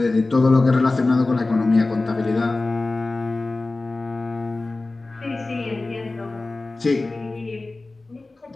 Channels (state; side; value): quieter; right; 3.2 dB